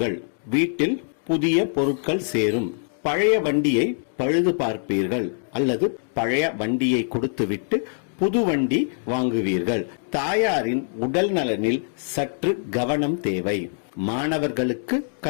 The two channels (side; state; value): right; silent; digital silence